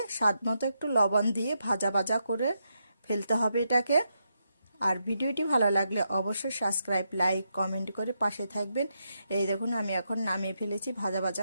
স্বাদ মতো একটু লবণ দিয়ে ভাজা ভাজা করে ফেলতে হবে এটাকে। আর ভিডিওটি ভালো লাগলে অবশ্যই সাবস্ক্রাইব, লাইক, কমেন্ট করে পাশে থাকবেন। এই দেখুন আমি এখন নামিয়ে ফেলেছি ভাজা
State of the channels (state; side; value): inverted; both; correlation -0.82